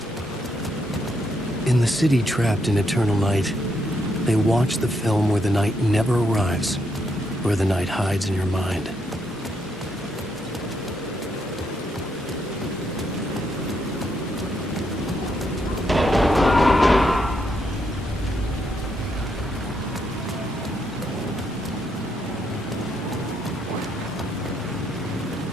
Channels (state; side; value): normal; both; correlation 0.77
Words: In the city trapped in eternal night, they watch the film where the night never arrives, where the night hides in your mind.